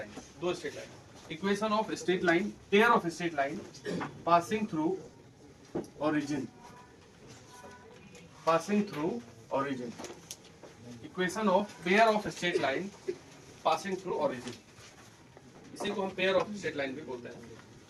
दो straight line, equation of straight line, pair of straight line passing through origin, equation of pair of straight line passing through origin, इसी को हम पेयर ऑफ स्ट्रेट लाइन भी बोलते हैं।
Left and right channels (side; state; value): both; identical; correlation 1.00